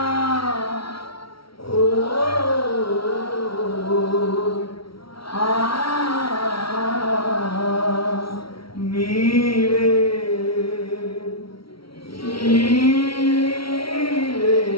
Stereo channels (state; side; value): late; right; 0.75 ms